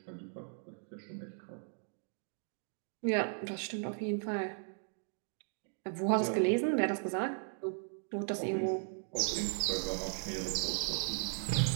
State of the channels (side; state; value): left; silent; 53 dB below the other